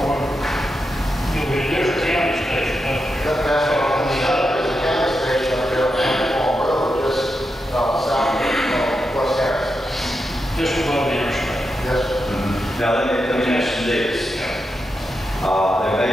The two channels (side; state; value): both; normal; correlation 0.87